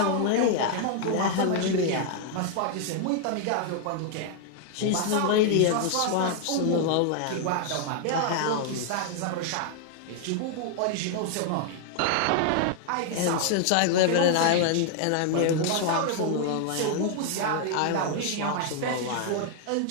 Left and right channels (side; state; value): both; different; correlation 0.00